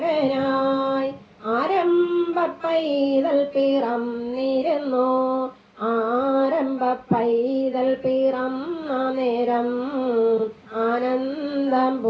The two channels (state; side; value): identical; both; correlation 1.00